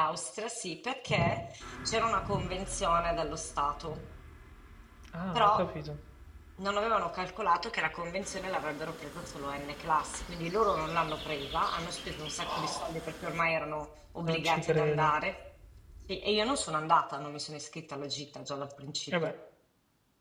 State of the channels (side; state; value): both; identical; correlation 1.00